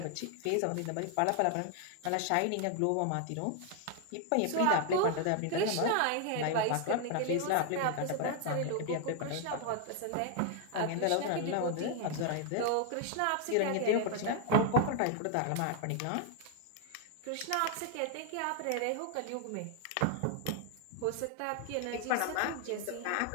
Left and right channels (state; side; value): different; both; correlation 0.00